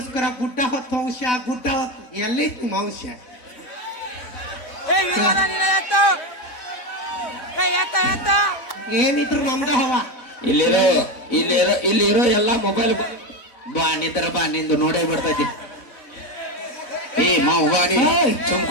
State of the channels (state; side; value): late; right; 4.0 ms